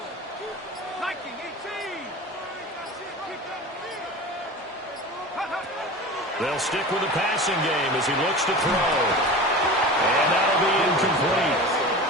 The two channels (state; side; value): normal; both; correlation 0.33